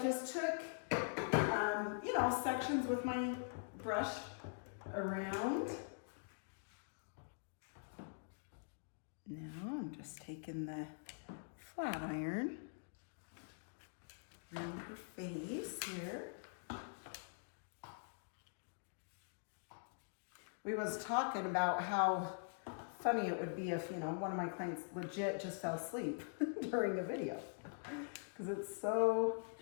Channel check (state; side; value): silent; right; digital silence